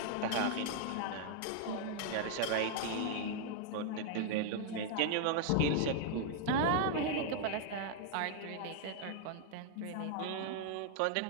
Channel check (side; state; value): both; different; correlation 0.00